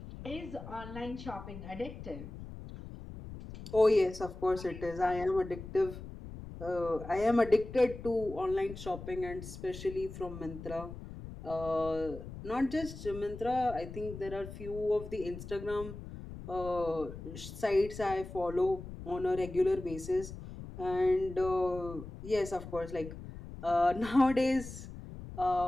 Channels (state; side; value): noise; left; rumble, 12 dB below the sound